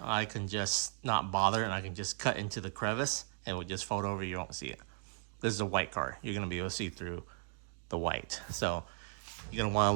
I can just not bother and I can just cut into the crevice and it would just fold over, you don't see it. This is a white car. You're gonna be able to see through the white. So you're gonna want a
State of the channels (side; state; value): left; silent; digital silence